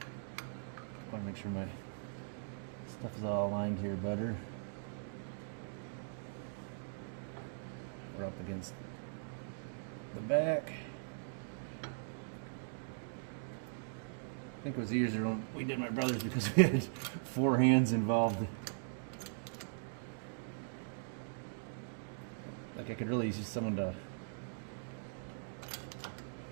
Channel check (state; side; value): silent; left; digital silence